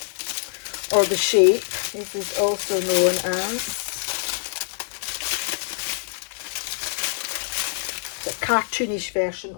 or The Shape, this is also known as. The cartoonish version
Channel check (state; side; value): silent; right; digital silence